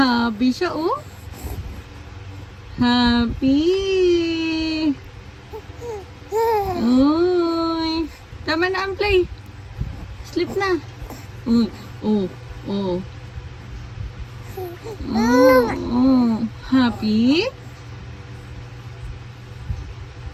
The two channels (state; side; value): identical; both; correlation 1.00